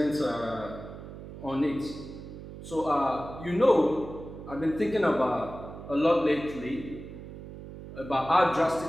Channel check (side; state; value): right; noise; hum, 13 dB below the sound